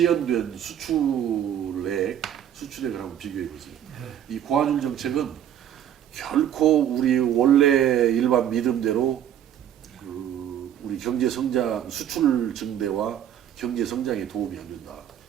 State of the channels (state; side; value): quieter; left; 10.2 dB